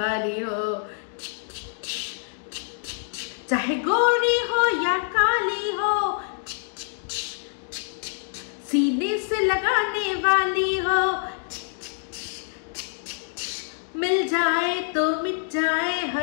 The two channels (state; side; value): silent; right; digital silence